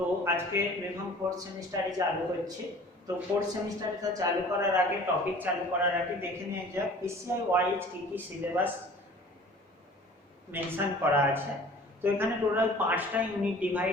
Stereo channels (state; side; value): normal; both; correlation 0.47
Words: আজকে BPharm fourth semester চালু হচ্ছে। তো fourth semester এটা চালু করার আগে টপিক চালু করার আগে দেখে নিয়ে যাক PCI ওয়াইজ কি কি সিলেবাস মেনশন করা আছে। তো এখানে টোটাল 5টা ইউনিট